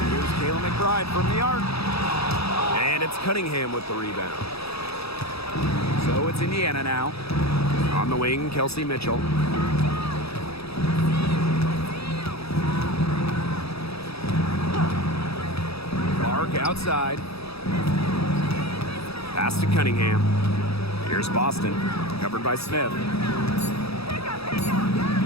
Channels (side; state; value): right; late; 0.77 ms